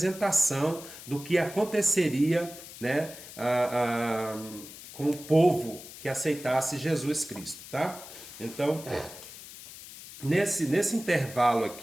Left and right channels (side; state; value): left; noise; hiss, 15 dB below the sound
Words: do que aconteceria, né, com o povo que aceitasse Jesus Cristo, tá? Então, nesse intervalo